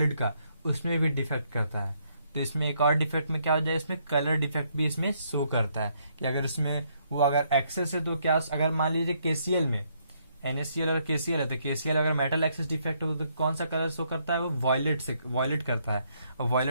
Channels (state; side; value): inverted; both; correlation -0.73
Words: का उसमें भी डिफेक्ट करता है। तो इसमें एक और डिफेक्ट में क्या हो जाए इसमें कलर डिफेक्ट भी इसमें शो करता है कि अगर उसमें वो अगर एक्सेस है तो क्या, अगर मान लीजिए KCl में NaCl और KCl है तो KCl अगर मेटल एक्सेस डिफेक्ट हो तो कौन सा कलर शो करता है, वो वॉयलेट करता है। और